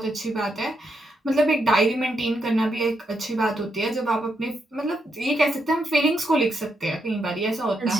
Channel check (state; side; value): normal; both; correlation 0.80